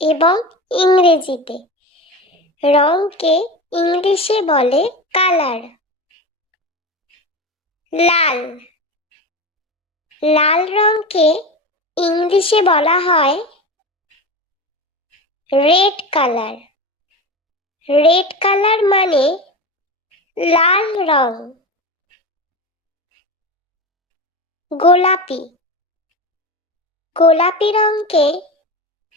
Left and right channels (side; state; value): both; normal; correlation 0.26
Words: এবং ইংরেজিতে। রঙকে ইংলিশে বলে কালার। লাল। লাল রঙকে ইংলিশে বলা হয় রেড কালার। রেড কালার মানে লাল রং। গোলাপি। গোলাপি রঙকে